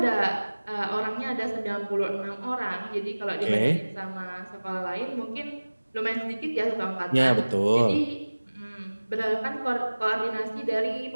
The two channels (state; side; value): inverted; both; correlation -1.00